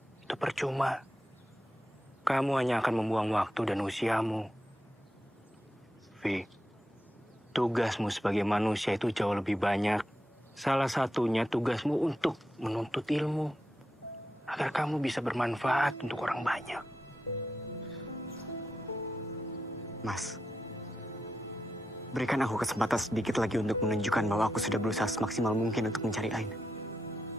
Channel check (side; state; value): both; normal; correlation 0.87